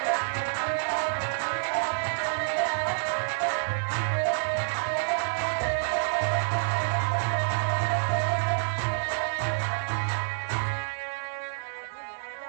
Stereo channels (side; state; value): left; silent; digital silence